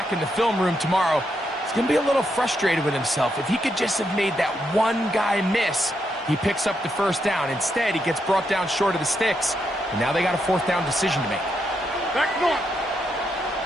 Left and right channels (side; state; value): both; normal; correlation 0.80